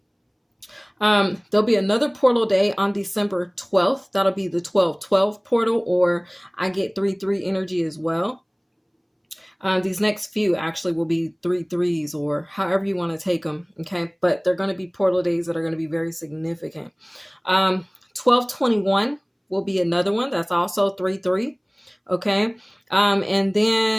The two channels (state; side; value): identical; both; correlation 1.00